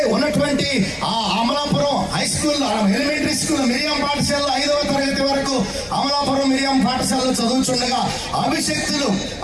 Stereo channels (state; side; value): identical; both; correlation 1.00